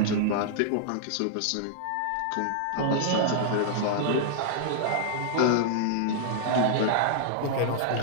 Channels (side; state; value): both; different; correlation -0.01